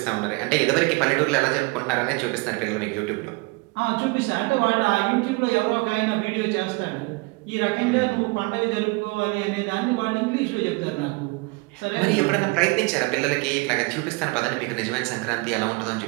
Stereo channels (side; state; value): left; quieter; 26.6 dB